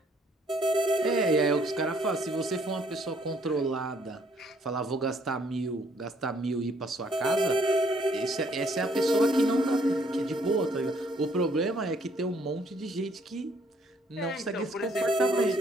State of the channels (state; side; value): normal; both; correlation 0.65